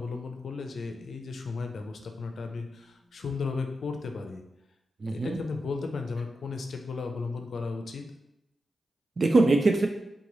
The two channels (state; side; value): normal; both; correlation 0.89